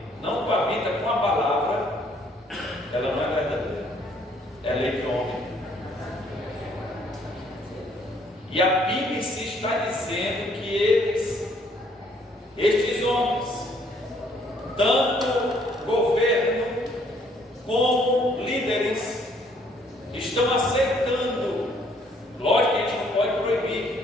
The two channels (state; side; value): normal; both; correlation 0.64